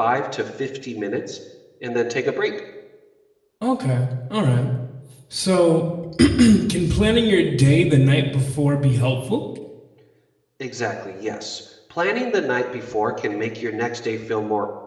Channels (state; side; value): identical; both; correlation 1.00